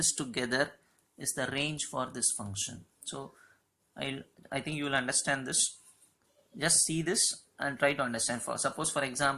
together is the range for this function. So I think you will understand this. Just see this and try to understand. For suppose for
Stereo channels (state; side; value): identical; both; correlation 1.00